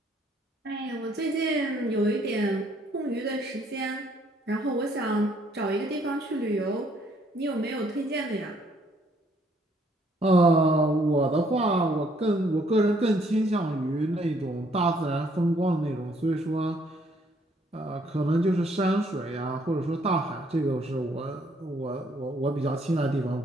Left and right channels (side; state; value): both; normal; correlation 0.66